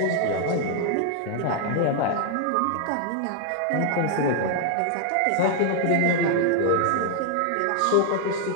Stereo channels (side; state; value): both; different; correlation 0.00